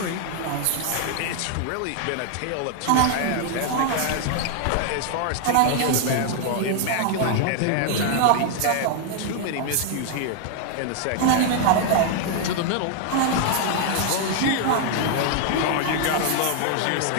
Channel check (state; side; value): different; both; correlation 0.00